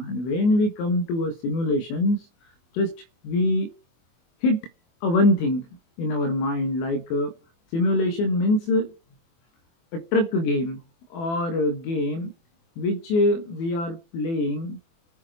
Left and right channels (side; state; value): right; late; 24 ms